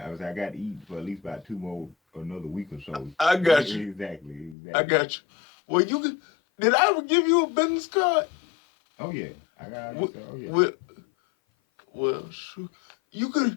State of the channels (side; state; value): right; drops out; at 4.5 s